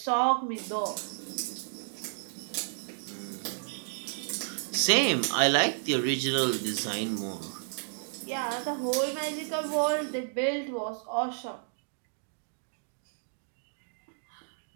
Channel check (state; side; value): silent; left; digital silence